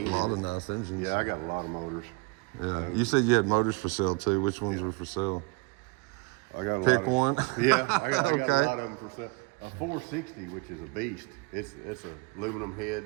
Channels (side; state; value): left; quieter; 26.2 dB